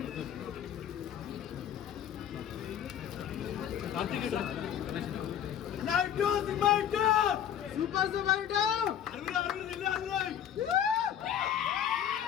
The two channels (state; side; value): quieter; right; 9.7 dB